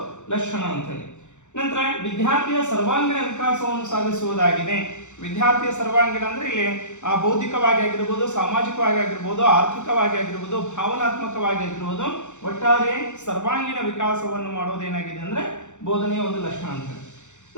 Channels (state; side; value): late; right; 0.84 ms